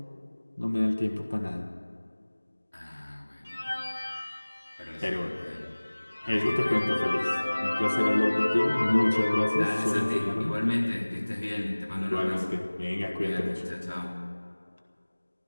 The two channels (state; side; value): inverted; both; correlation -1.00